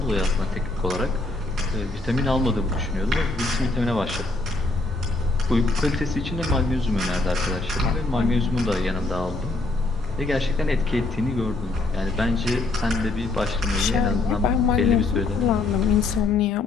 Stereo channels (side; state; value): right; quieter; 3.1 dB